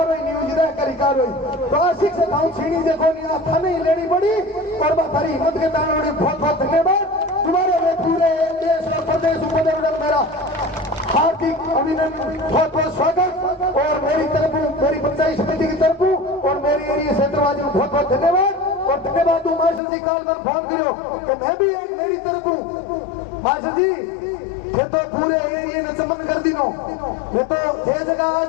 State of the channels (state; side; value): drops out; right; at 19.8 s